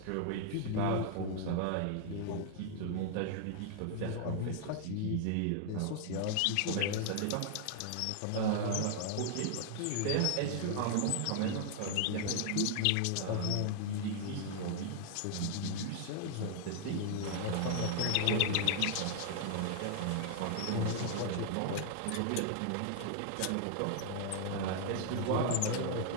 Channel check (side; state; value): both; different; correlation 0.00